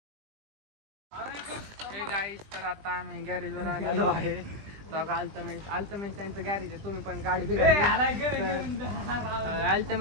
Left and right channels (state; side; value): late; left; 20 ms